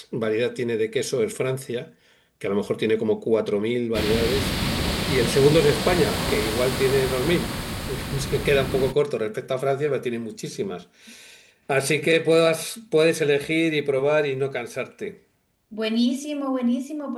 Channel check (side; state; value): both; identical; correlation 1.00